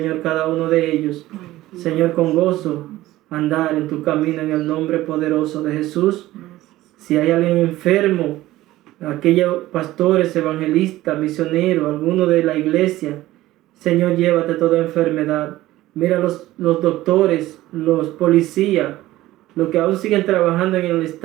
cada uno de ellos, Señor, con gozo andar en tu camino en el nombre poderoso de Jesús. Si hay alguien enfermo, aquellos pastores, evangelistas, misioneros, alguno de la iglesia, Señor, llévate toda enfermedad. Mira los doctores, los policías, los que aún siguen trabajando en el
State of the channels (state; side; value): quieter; left; 16.2 dB